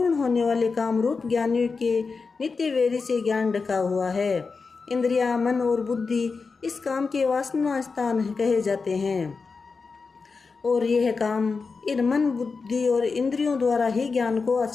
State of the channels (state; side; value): quieter; right; 4.6 dB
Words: होने वाले काम रूप ज्ञानियों के नित्य वेरी से ज्ञान ढका हुआ है। इंद्रिया, मन और बुद्धि इस काम के वासना स्थान कहे जाते हैं, और यह काम इन मन, बुद्धि और इंद्रियों द्वारा ही ज्ञान को